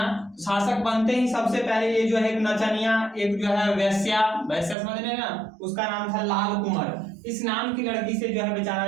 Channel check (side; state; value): left; drops out; at 4.8 s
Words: शासक बनते ही सबसे पहले ये जो है एक नचनिया, एक जो है वैश्या वैश्या समझ रहे हैं ना, उसका नाम था लाल कुंवर। इस नाम की लड़की से जो है बेचारा